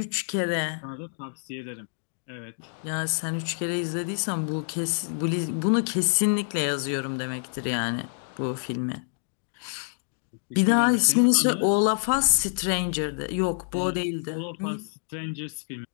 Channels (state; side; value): silent; right; digital silence